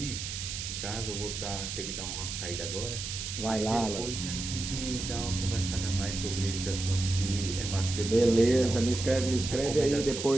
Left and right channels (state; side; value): noise; right; hiss, 6 dB below the sound